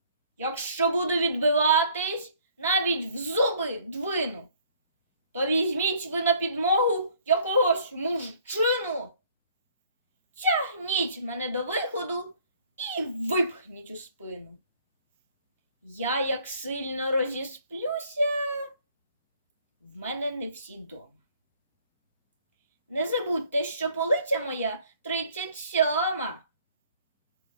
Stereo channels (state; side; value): inverted; both; correlation -0.59